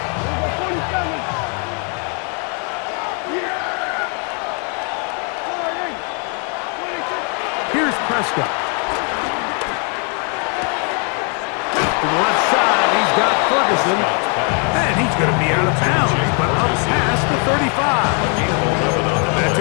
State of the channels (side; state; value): right; quieter; 39.2 dB